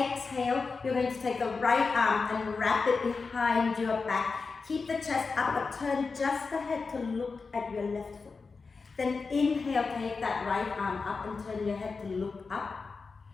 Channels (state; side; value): quieter; right; 4.5 dB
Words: you're going to take the right arm and wrap it behind your back. Keep the chest up, but turn just the head to look at your left foot. Then inhale, take that right arm up and turn your head to look up.